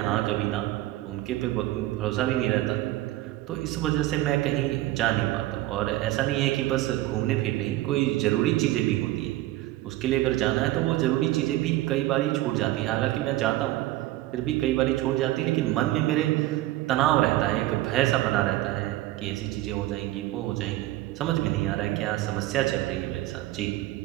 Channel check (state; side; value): quieter; left; 16.3 dB